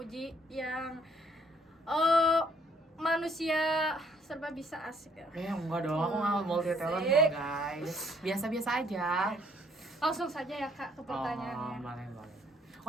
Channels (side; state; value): both; normal; correlation 0.65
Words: yang manusia serba bisa, asik ya. Enggak dong, aku nggak multi talent kok guys. Biasa-biasa aja. Langsung saja ya Kak ke pertanyaannya. Boleh.